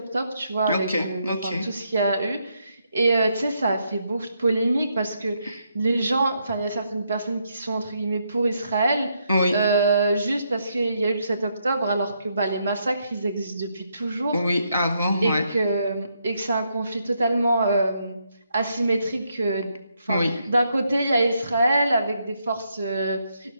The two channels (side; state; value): both; inverted; correlation -0.77